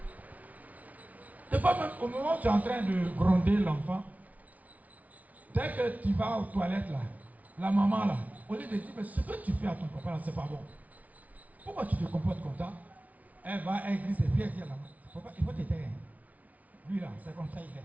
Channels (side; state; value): left; late; 0.071 ms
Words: Des fois même au moment où tu es en train de gronder l'enfant, dès que tu vas aux toilettes là, la maman là, au lieu de dire mais ce que tu fais à ton papa là, c'est pas bon. Pourquoi tu te comportes comme ça? Elle va, elle glisse et puis elle dit à la maman, papa, il faut te taire. Lui là, c'est comme ça il est.